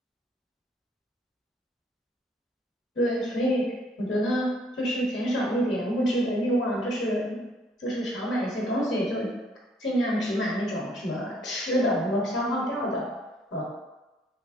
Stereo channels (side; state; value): both; normal; correlation 0.64